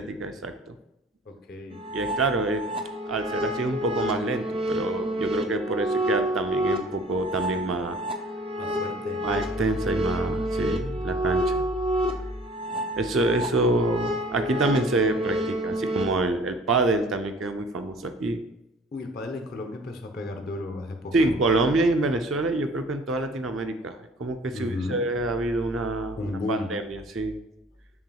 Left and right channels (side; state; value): both; normal; correlation 0.50